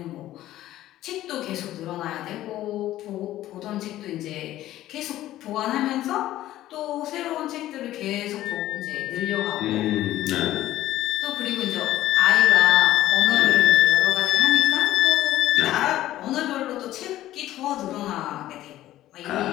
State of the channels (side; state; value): right; quieter; 14.3 dB